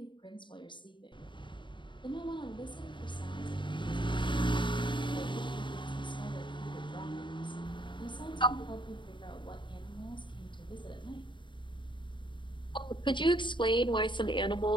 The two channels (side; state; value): right; late; 0.23 ms